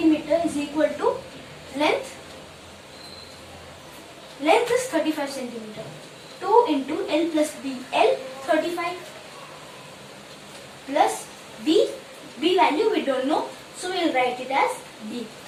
is equal to length. Length is 35 centimeter. 2 into L plus B. L 35 plus B. B value we don't know. So we will write it as B.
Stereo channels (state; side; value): identical; both; correlation 1.00